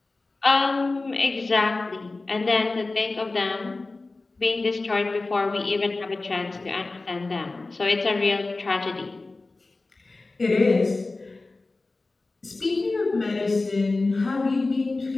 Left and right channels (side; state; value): right; quieter; 3.4 dB